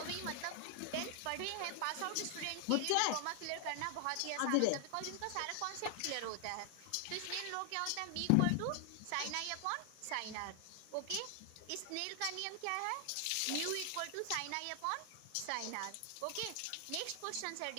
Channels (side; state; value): both; different; correlation 0.00